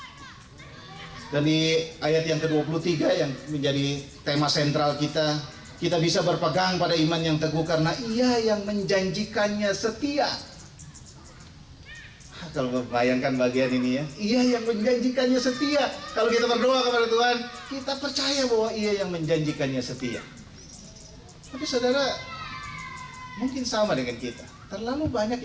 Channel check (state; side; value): identical; both; correlation 1.00